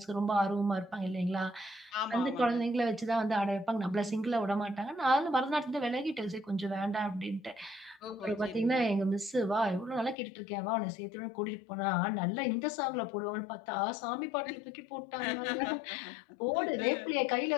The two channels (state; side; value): drops out; right; at 10.2 s